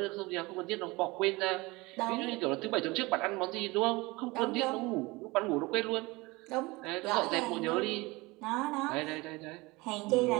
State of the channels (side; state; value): left; quieter; 23.1 dB